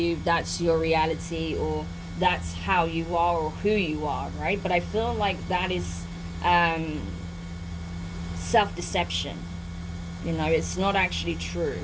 that's your reality, or that's how you are or who you are, right? But I feel like that is self-deception. It's not actually true.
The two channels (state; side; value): identical; both; correlation 1.00